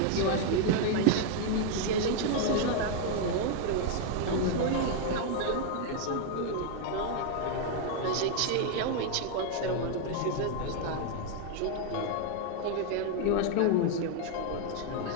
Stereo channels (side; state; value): both; different; correlation 0.00